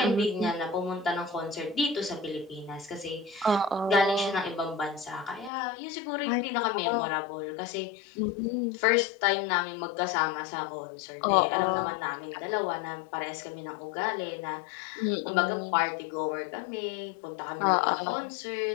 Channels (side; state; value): right; drops out; at 5.5 s